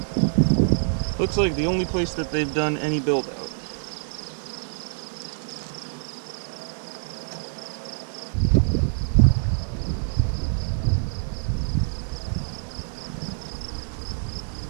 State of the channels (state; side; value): silent; left; digital silence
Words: looks like the only place that they've done any build out.